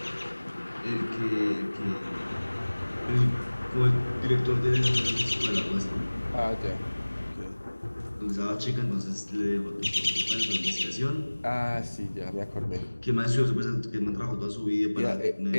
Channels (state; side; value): inverted; both; correlation -1.00